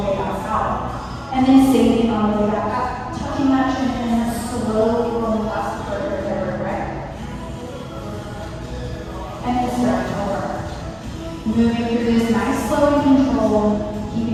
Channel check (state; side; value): identical; both; correlation 1.00